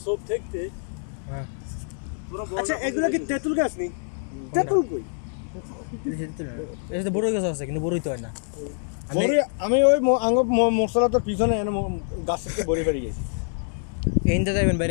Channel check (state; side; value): silent; right; digital silence